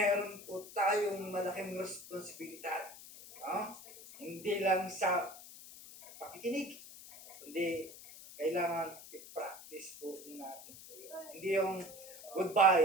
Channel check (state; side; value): noise; left; hiss, 16 dB below the sound